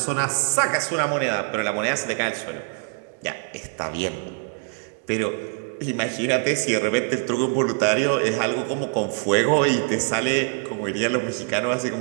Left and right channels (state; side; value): quieter; left; 39.5 dB